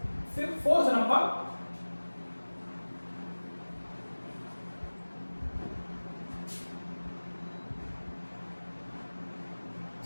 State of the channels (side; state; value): both; inverted; correlation -1.00